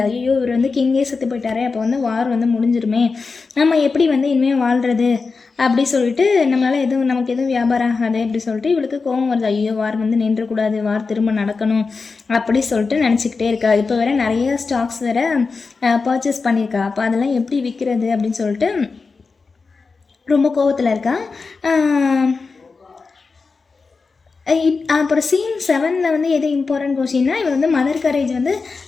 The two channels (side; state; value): right; quieter; 4.5 dB